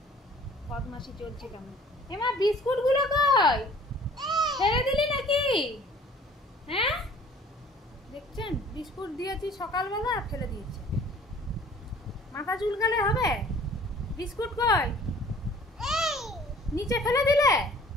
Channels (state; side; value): normal; both; correlation 0.51